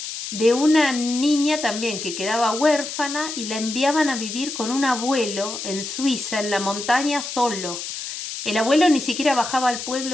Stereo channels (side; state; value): left; noise; hiss, 7 dB below the sound